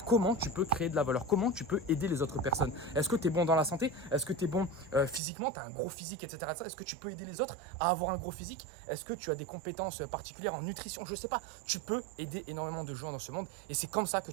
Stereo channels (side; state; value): left; drops out; at 5.2 s